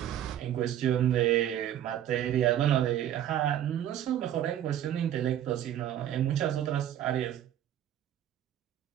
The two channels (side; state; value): left; quieter; 11.2 dB